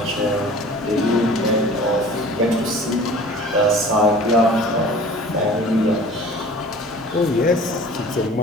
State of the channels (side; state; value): both; normal; correlation 0.44